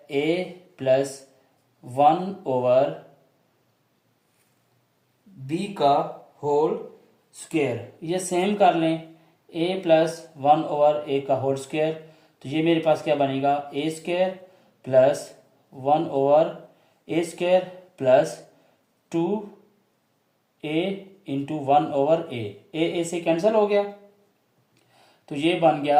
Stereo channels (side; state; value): both; identical; correlation 1.00